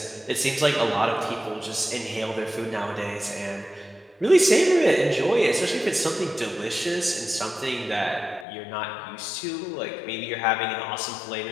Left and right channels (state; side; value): drops out; right; at 8.5 s